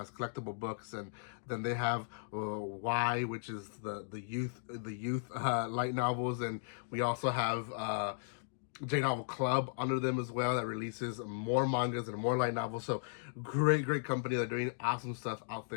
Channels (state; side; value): silent; right; digital silence